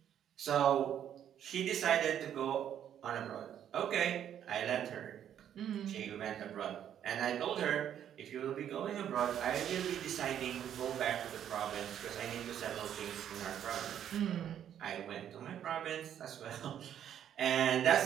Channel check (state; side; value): quieter; left; 9.9 dB